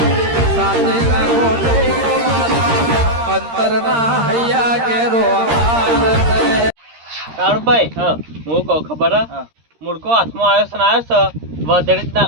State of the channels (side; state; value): left; late; 13 ms